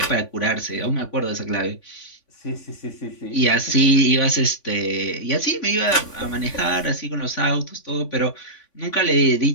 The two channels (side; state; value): right; late; 3.5 ms